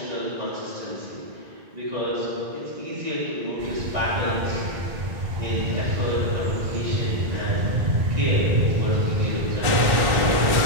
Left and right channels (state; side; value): late; left; 1.5 ms